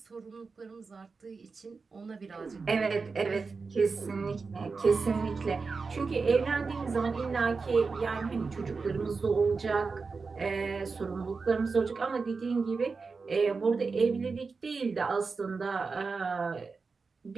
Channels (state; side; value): quieter; left; 4.6 dB